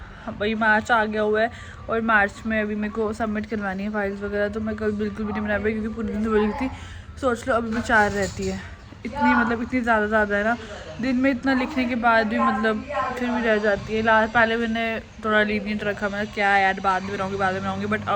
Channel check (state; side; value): identical; both; correlation 1.00